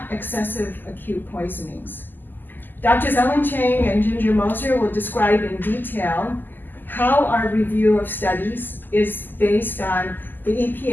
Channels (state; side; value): late; right; 0.089 ms